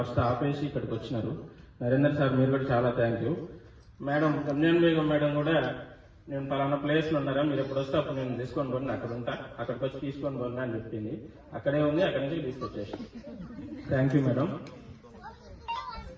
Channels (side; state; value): both; identical; correlation 1.00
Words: ఆపేసి ఇక్కడికి వచ్చినారు. నరేందర్ సార్ మీరు కూడా చాలా thank you. Madam Ramzan Begum madam కూడా నేను పలానా ప్లేస్లో ఉన్నారా, మీరు ఎప్పుడు వస్తే అప్పుడు నేను తీసుకొని పోండి, అక్కడ ఉంటా, అక్కడికి వచ్చి తీసుకొని పోండి అని చెప్పింది. అక్కడే ఉంది, అక్కడి నుంచి తీసుకొచ్చేసి. Thank you madam.